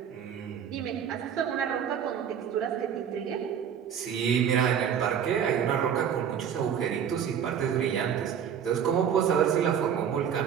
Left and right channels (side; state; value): left; quieter; 8.3 dB